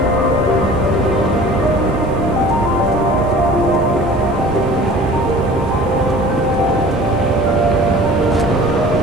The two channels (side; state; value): right; noise; hiss, 30 dB below the sound